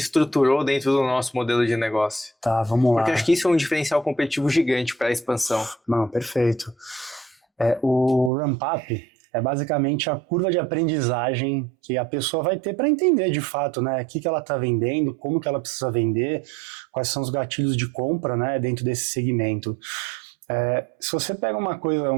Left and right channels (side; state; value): left; drops out; at 8.3 s